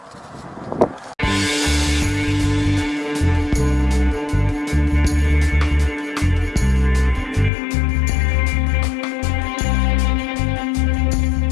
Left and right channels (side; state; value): right; drops out; at 7.5 s